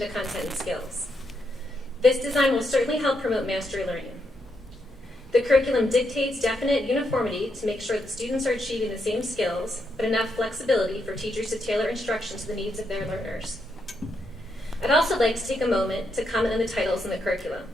to content and skills. This design will certainly help promote mastery learning. The curriculum dictates definite uniformity to make sure that students are achieving the same skills, but enough flexibility for teachers to tailor instruction to the needs of their learners. I'd also like to take a moment to comment on the titles in the curriculum.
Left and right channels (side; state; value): both; normal; correlation 0.80